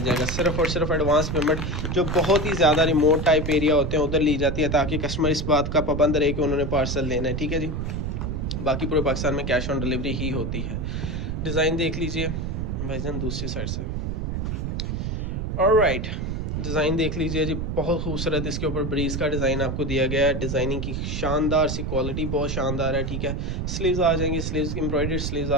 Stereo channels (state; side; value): noise; right; rumble, 2 dB below the sound